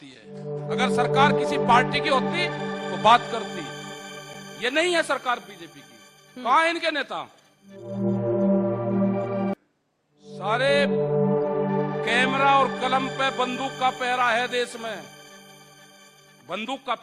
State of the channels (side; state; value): both; identical; correlation 1.00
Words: है। अगर सरकार किसी पार्टी की होती तो बात करती। ये नहीं है सरकार बीजेपी की। कहां है इनके नेता? सारे कैमरा और कलम पे बंदूक का पहरा है देश में, बंदूक का